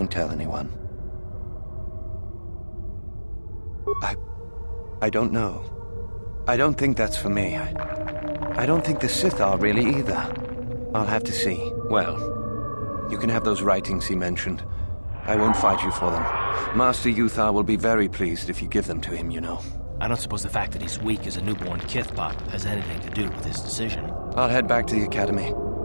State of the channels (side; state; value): both; inverted; correlation -1.00